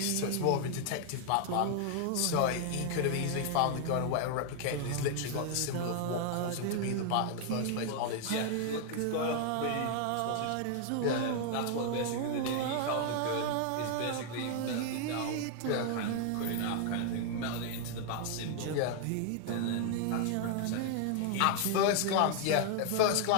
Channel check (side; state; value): both; different; correlation 0.00